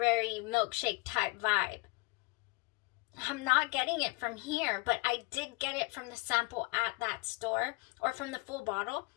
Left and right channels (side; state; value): right; quieter; 26.7 dB